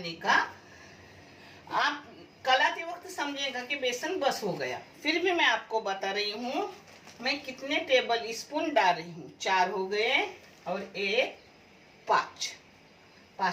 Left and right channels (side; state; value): both; identical; correlation 1.00